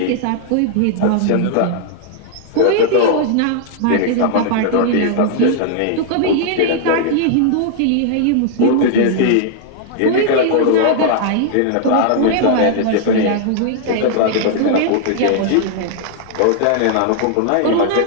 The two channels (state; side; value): different; both; correlation 0.00